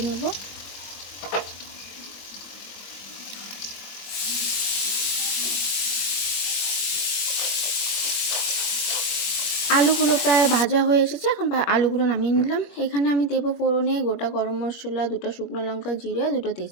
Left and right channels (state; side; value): late; right; 21 ms